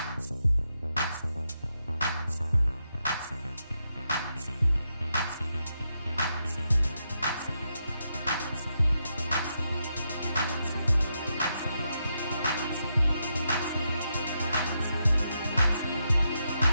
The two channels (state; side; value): inverted; both; correlation -0.83